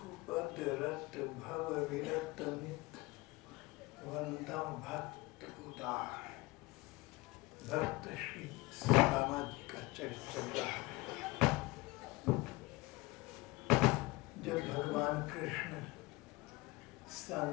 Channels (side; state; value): right; quieter; 21.8 dB